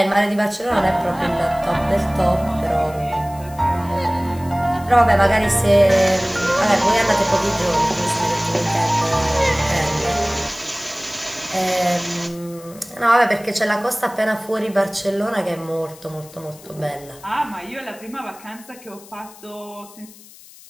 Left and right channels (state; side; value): noise; left; hiss, 21 dB below the sound